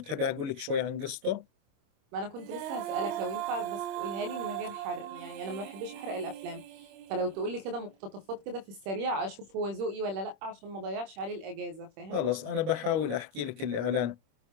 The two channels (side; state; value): left; late; 26 ms